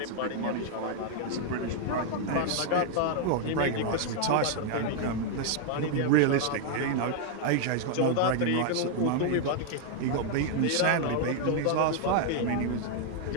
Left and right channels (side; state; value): both; different; correlation 0.00